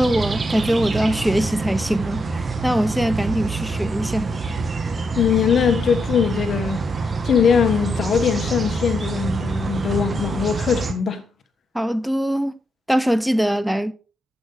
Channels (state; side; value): normal; both; correlation 0.81